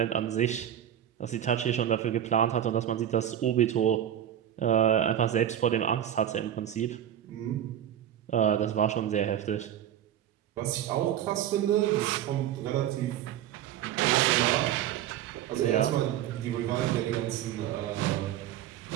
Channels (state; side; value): quieter; left; 10.8 dB